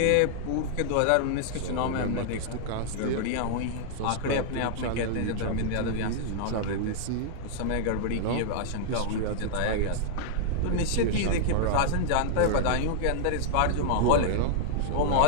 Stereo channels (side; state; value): both; different; correlation -0.01